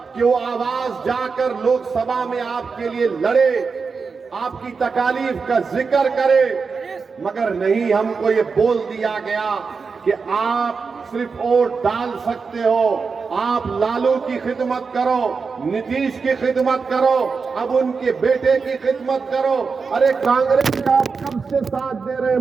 कि वो आवाज जाकर लोकसभा में आपके लिए लड़े, आपकी तकालीफ का जिक्र करे, मगर नहीं, हमको ये बोल दिया गया कि आप सिर्फ वोट डाल सकते हो, आप लालू की खिदमत करो, नीतीश की खिदमत करो, अब उनके बेटे की खिदमत करो। अरे कांग्रेस का आप कब से साथ दे रहे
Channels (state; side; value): quieter; left; 5.0 dB